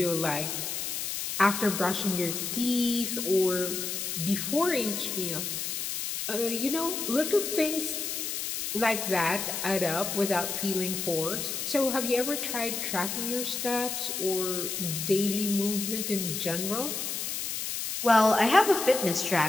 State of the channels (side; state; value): left; noise; hiss, 3 dB below the sound